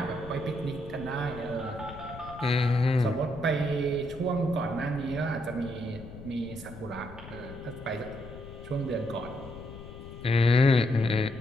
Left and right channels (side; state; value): left; noise; rumble, 14 dB below the sound